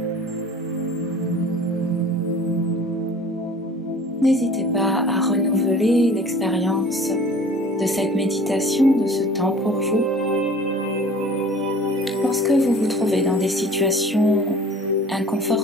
N'hésitez pas à renouveler l'expérience de cette méditation, de ce temps pour vous. Lorsque vous vous trouvez dans des situations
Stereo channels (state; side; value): normal; both; correlation 0.46